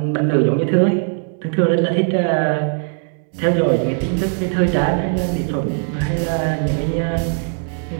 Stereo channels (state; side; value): silent; left; 56 dB below the other